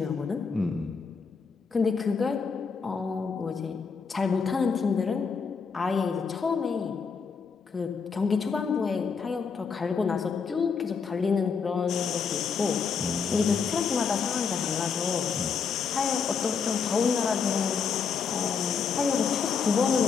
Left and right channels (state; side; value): quieter; right; 5.7 dB